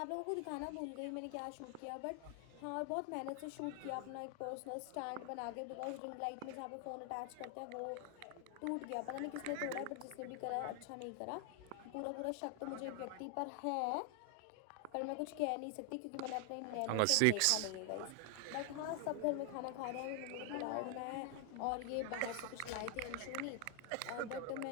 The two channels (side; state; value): both; different; correlation 0.00